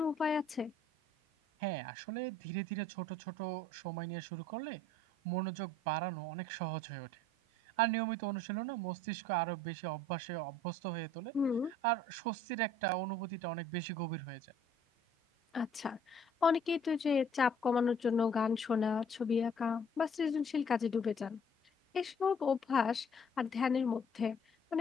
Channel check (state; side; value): normal; both; correlation 0.57